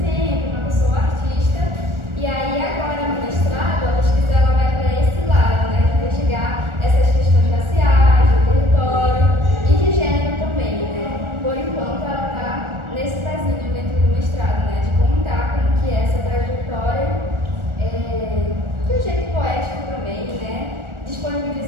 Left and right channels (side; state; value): left; late; 1.4 ms